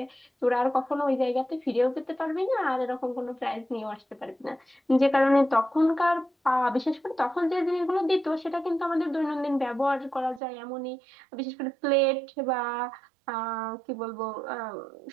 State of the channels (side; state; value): left; drops out; at 10.4 s